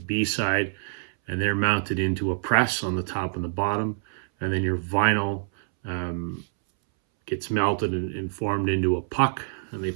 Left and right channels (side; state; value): left; silent; 61 dB below the other